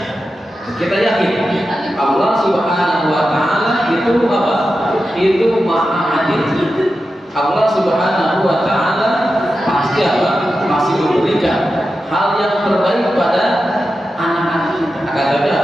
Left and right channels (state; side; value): normal; both; correlation 0.91